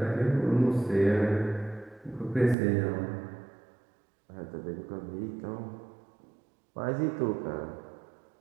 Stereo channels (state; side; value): drops out; left; at 2.6 s